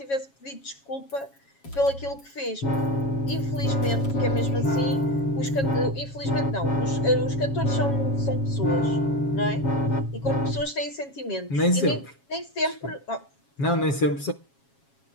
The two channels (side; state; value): right; late; 7.3 ms